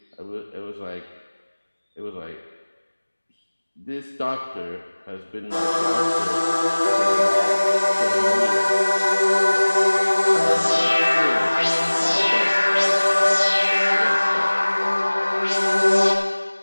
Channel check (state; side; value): inverted; both; correlation -1.00